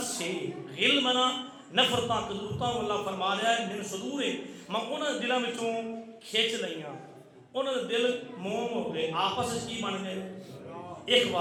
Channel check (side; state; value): both; identical; correlation 1.00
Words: سے غل منا نفرتاں کدورتاں اللہ فرما رہا ہے من صدور میں انہوں نے دلوں وچوں کھچ لیاں انہوں نے دل موم ہو گئے آپس کی بن گئے